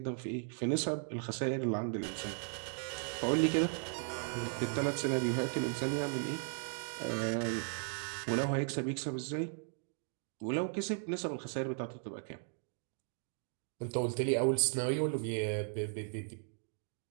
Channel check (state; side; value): silent; left; 53 dB below the other